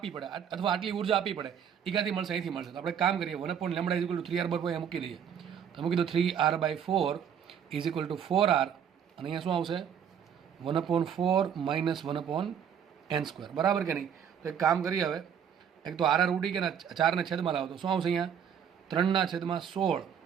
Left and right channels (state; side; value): quieter; left; 8.3 dB